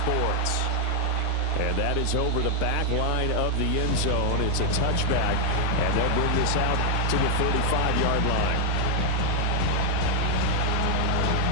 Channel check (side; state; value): both; different; correlation 0.01